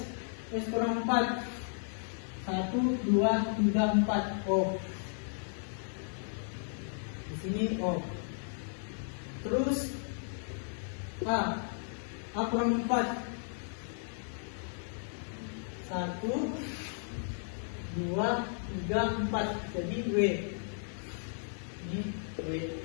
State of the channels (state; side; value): silent; right; digital silence